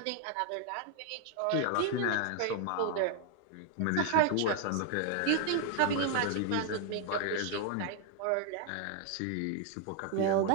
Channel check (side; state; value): both; different; correlation 0.00